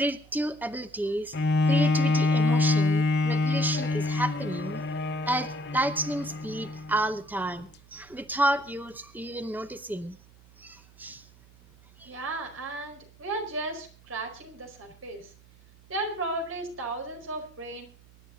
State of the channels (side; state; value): right; noise; hum, 25 dB below the sound